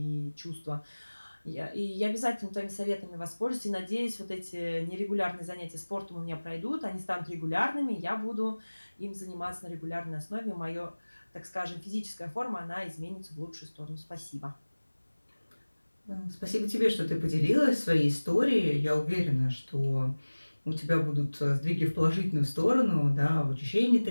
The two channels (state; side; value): inverted; both; correlation -1.00